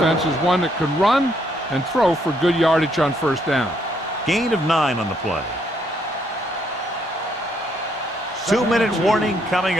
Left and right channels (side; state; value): both; normal; correlation 0.72